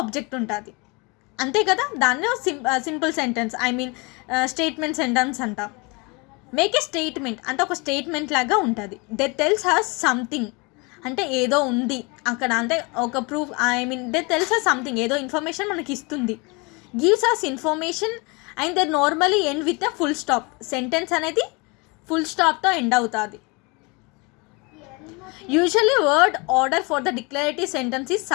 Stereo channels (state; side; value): quieter; right; 28.5 dB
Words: ఉంటుంది, అంతే కదా. దాన్ని సింపుల్ సెంటెన్స్ స్టేట్మెంట్ సెంటెన్స్ అంటాం. మేక్ ఏ స్టేట్మెంట్ అంటే ఒక స్టేట్మెంట్ లాగా ఉంటుంది. దే టెల్స్ హస్ సంథింగ్ అంటే ఏదో ఉంది అక్కడ, అంటే ఒక proof, they tells us something, ఏదో ఇన్ఫర్మేషన్ మనకి ఇస్తుంది. Gives us information and they normally end with a full stop. Sentence అనేది ఫుల్ స్టాప్తో ఎండ్ అవుతుంది. Usually word order for the declarative sentence is